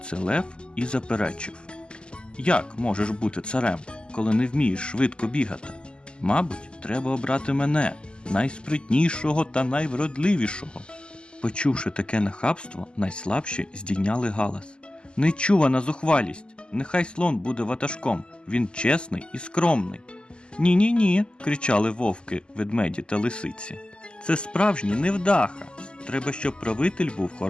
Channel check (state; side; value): late; right; 0.049 ms